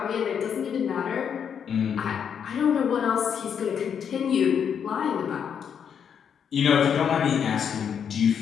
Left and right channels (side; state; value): right; quieter; 7.7 dB